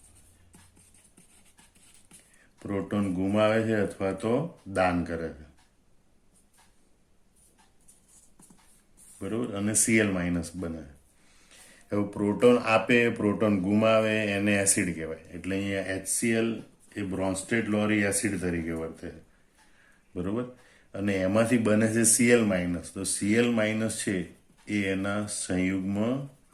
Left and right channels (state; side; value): identical; both; correlation 1.00